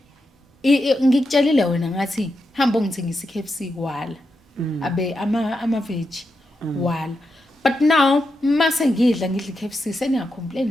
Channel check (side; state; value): both; normal; correlation 0.86